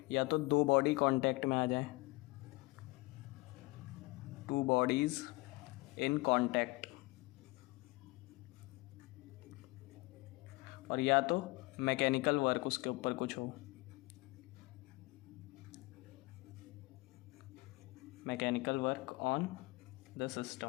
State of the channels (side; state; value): right; quieter; 23.7 dB